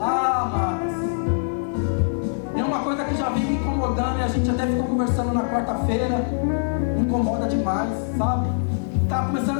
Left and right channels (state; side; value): silent; right; digital silence